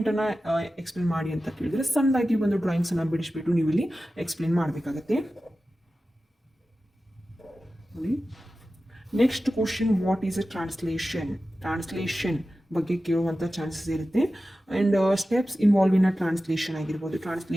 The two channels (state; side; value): normal; both; correlation 0.94